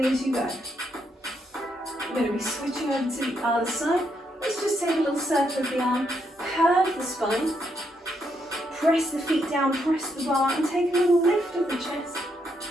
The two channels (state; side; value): normal; both; correlation 0.77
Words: as you go. We're going to be switching over to the other side. Let's just take a little circle of the arm, curve the spine, press the feet down, press the bar, and take a little lift of the chest.